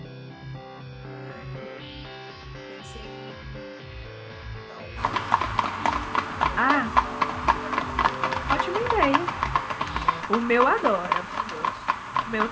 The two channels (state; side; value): identical; both; correlation 1.00